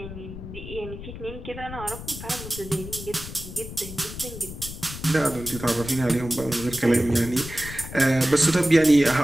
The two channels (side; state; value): left; noise; rumble, 11 dB below the sound